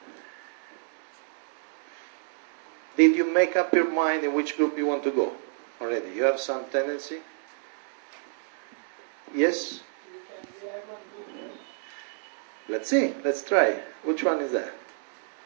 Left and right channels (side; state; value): left; silent; digital silence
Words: Did you make up your mind in which group you want to go already? You have some tendency? Yes? Let's see. Let's try. Which one is that?